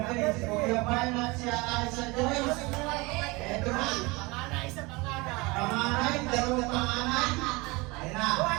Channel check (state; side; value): quieter; left; 24.6 dB